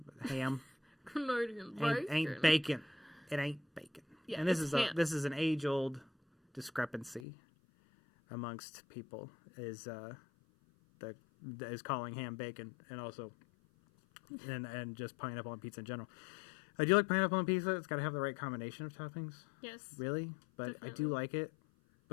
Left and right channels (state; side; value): drops out; right; at 7.2 s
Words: But ham. Canadian bacon. Ain't bacon. It ain't bacon. Yeah, and this is an age-old discrepancy amongst people is calling ham bacon, and also and just pineapple on pizza in general. I do like pineapple on pizza. It's got to have the right combination of toppings. Yes. Really, but definitely. I do like it.